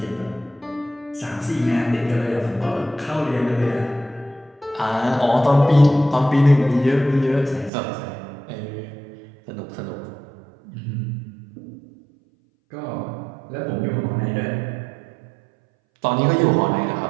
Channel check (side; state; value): left; drops out; at 7.7 s